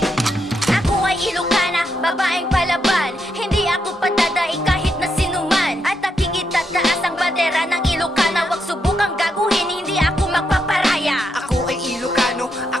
ay Ilocana, babaeng palaban. Hindi ako padadai kahit na sinuman. At aking itataas ang bandera ng Ilocana. Huwag subukang gaguhin, hindi ako magpaparaya. Ako ay Ilocano,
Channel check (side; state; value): both; normal; correlation 0.81